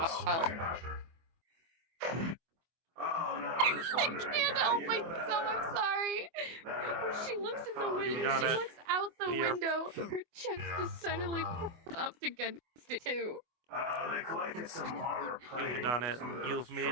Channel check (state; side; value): late; left; 24 ms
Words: Oh no, I can't help myself, I'm sorry. She looks in the window, she looks out the window, her chest just suddenly pops up against it too. They collected some armor plating. You've done it. You've